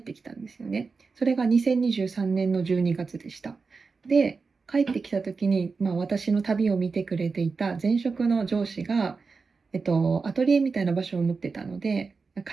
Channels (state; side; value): quieter; left; 4.6 dB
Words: てきたんですよね。それが2023年の12月でした。で、帰ってきた時に、私の旅を見てくれていた前職の上司が、アトリエみたいな場所を持ってたので、